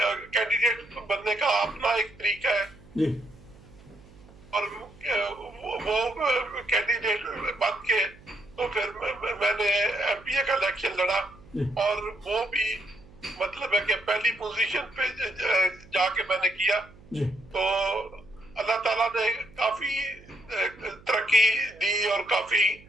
کینڈیڈیٹ بننے کا اپنا ایک طریقہ ہے. جی. اور وہ کینڈیڈیٹ بن کے تو پھر میں نے MPA کا الیکشن لڑا اور وہ بھی مطلب ہے کہ پہلی پوزیشن پہ جا کے میں نے کیا. تو اللہ تعالیٰ نے کافی ترقی دی اور کافی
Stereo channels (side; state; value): right; noise; hum, 23 dB below the sound